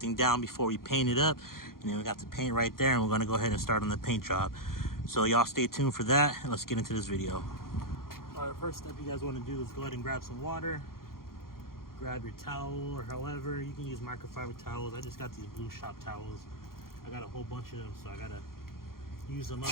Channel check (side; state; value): right; late; 0.92 ms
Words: down before we paint it up. And then we got the paint right there, and we're gonna go ahead and start on the paint job. So y'all stay tuned for that, and let's get into this video. All right, first step you guys want to do is go ahead and grab some water. Grab your towel, or however you can use microfiber towels. I just got these blue shop towels. I got a whole bunch of them, so I gotta use them